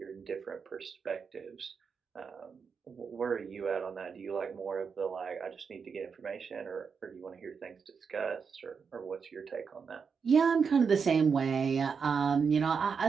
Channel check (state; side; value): quieter; left; 5.9 dB